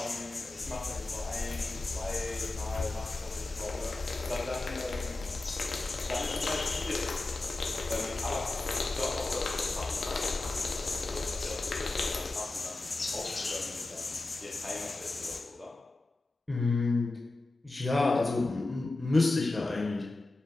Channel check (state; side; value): quieter; right; 3.0 dB